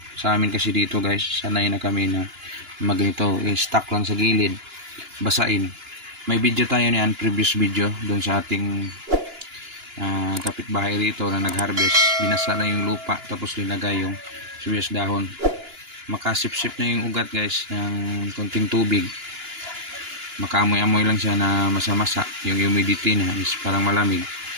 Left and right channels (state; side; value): late; left; 2.9 ms